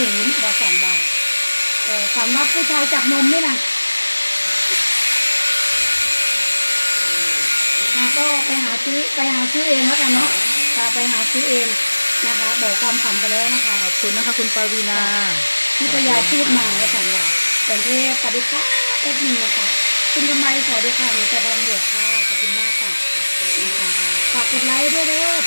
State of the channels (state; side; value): inverted; both; correlation -1.00